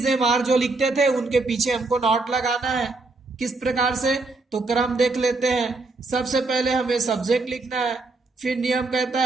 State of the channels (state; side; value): quieter; left; 3.5 dB